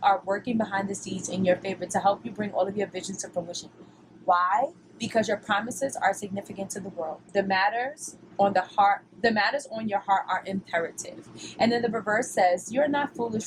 are working behind the scenes in your favor to help you bring all of your visions to fruition. Why? Because your promises are significant to the world. The matters on your heart are imperative. And then the reverse says, you're not foolish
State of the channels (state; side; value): identical; both; correlation 1.00